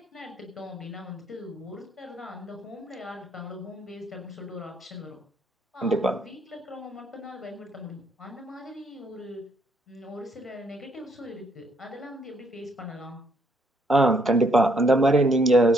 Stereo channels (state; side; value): normal; both; correlation 0.70